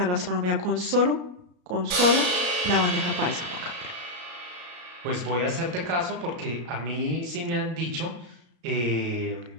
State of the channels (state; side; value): late; left; 33 ms